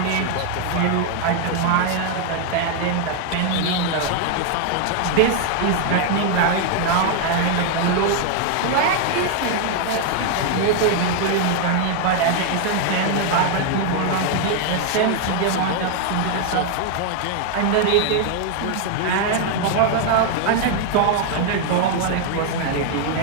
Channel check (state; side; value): different; both; correlation 0.00